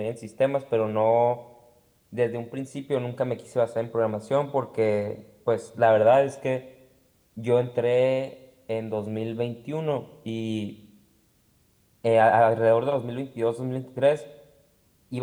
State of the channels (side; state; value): both; identical; correlation 1.00